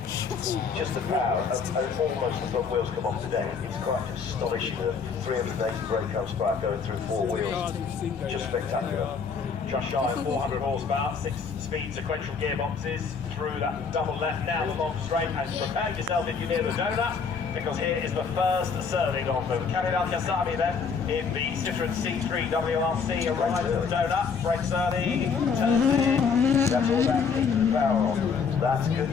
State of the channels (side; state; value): right; quieter; 5.7 dB